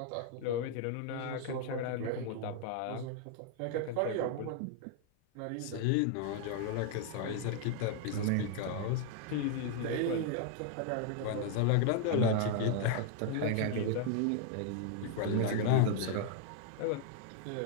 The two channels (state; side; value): different; both; correlation 0.00